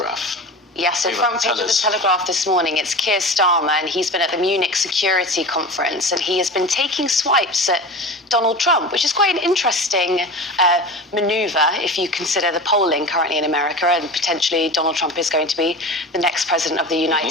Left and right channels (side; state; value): both; normal; correlation 0.32